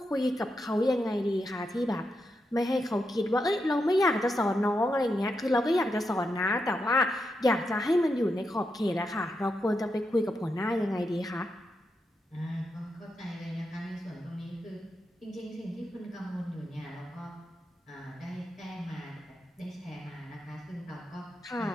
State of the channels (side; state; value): both; normal; correlation 0.85